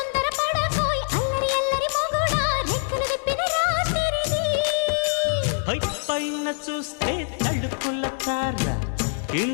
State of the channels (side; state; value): right; silent; 62 dB below the other